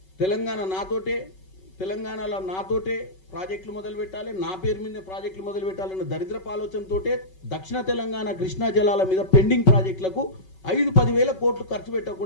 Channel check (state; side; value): late; right; 5.3 ms